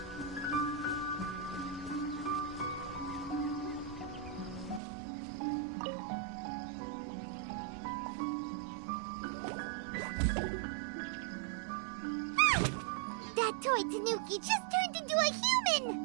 That toy Tanuki just turned into a human!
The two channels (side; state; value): left; drops out; at 4.8 s